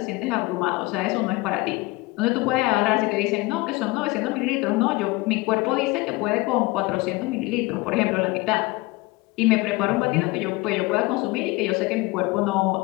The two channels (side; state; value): right; quieter; 22.4 dB